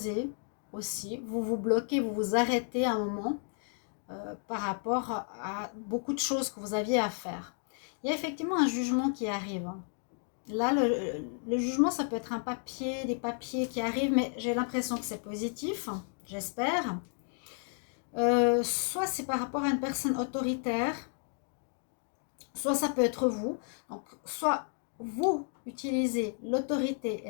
aussi. Vous vous bloquez, vous vous arrêtez un moment par rapport à beaucoup de choses que vous aviez à faire. Il y a effectivement un jugement qui arrive. Là, le jugement, ça peut être un papier, des papiers qui arrivent, mais j'ai l'impression que c'est positif, j'espère. Soit c'est par rapport à une personne autoritaire, soit ça peut être vous. Donc, soit vous utilisez l'autorité et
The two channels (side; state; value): right; silent; 56 dB below the other